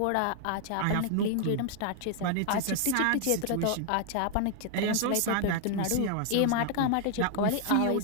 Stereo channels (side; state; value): both; different; correlation 0.00